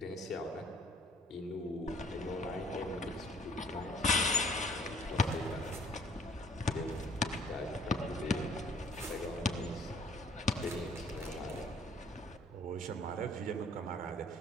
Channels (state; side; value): normal; both; correlation 0.56